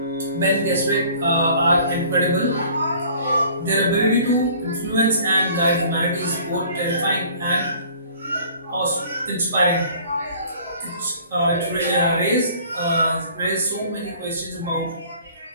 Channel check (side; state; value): both; inverted; correlation -0.51